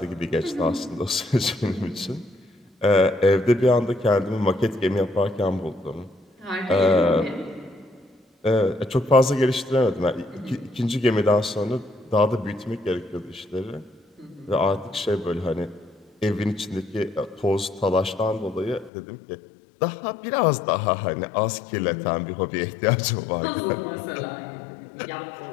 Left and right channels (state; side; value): drops out; right; at 18.9 s